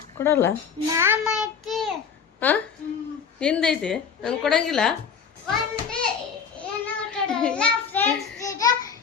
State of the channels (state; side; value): quieter; right; 6.6 dB